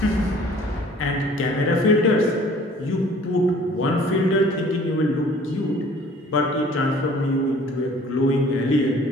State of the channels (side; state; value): both; normal; correlation 0.52